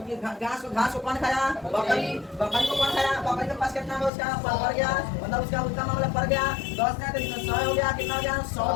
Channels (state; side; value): drops out; right; at 4.1 s